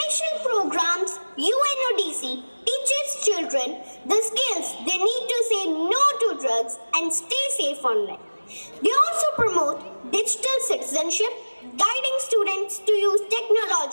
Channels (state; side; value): inverted; both; correlation -1.00